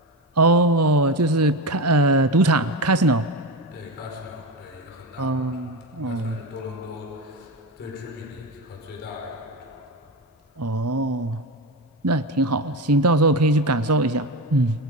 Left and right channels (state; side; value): normal; both; correlation 0.18